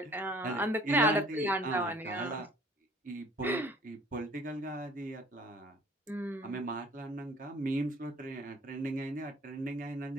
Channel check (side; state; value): both; normal; correlation 0.53